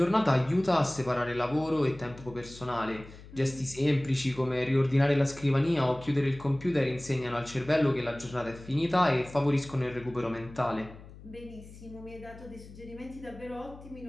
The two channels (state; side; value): noise; left; hum, 18 dB below the sound